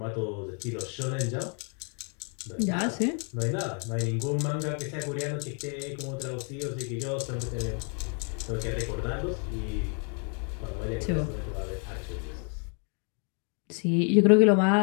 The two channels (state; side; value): quieter; right; 39.2 dB